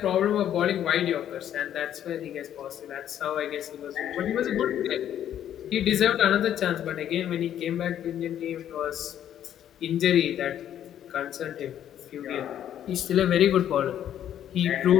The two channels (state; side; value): quieter; right; 10.5 dB